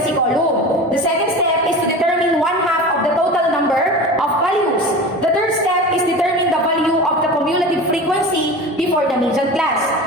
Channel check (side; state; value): both; normal; correlation 0.32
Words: column. The second step is to determine 1/2 of the total number of values. The third step is determine the value of the cumulative frequency before the median class.